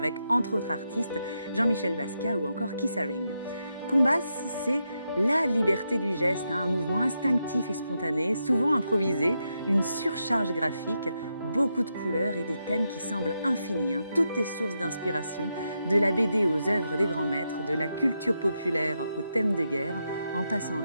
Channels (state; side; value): inverted; both; correlation -0.84